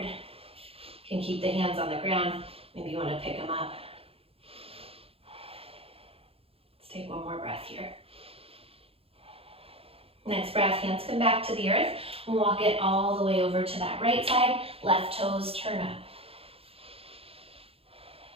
You can keep the hands on the ground. Maybe you want to pick them up. Let's take one more breath here. Next breath, hands come back to the earth. Walk it all the way over to that right side. Left toes turn up.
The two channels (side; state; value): left; late; 0.28 ms